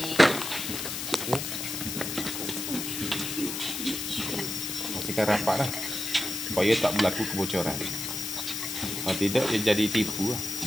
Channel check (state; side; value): noise; left; hiss, 4 dB below the sound